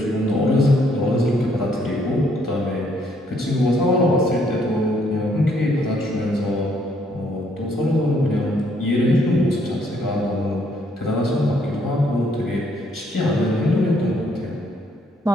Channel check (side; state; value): both; normal; correlation 0.68